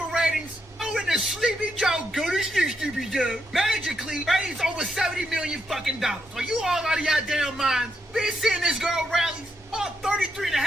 ratings, in the Sleepy Joe, go to sleep, Sleepy Joe, magically raised over $70 million fucking dollars. Are you all out of your damn minds? Been seeing this girl rallies? All 33 and a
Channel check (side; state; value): both; normal; correlation 0.80